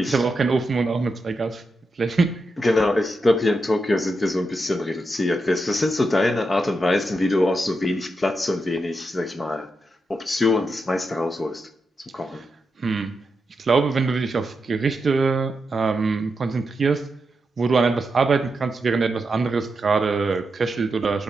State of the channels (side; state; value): both; normal; correlation 0.86